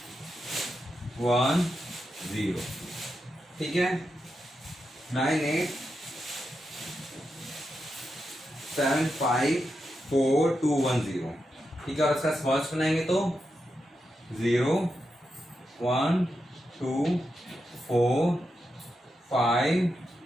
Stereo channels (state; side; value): normal; both; correlation 0.87